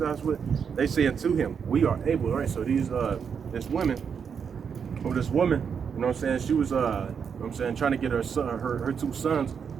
with? They say unto him, We are able. Right? So this woman, you know what I'm saying? She was, you know what I'm saying, trying to get her son, her two sons,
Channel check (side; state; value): left; quieter; 6.8 dB